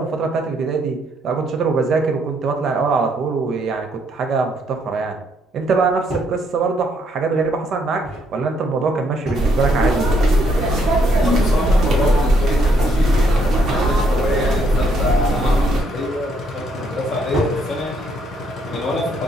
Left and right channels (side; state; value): both; normal; correlation 0.71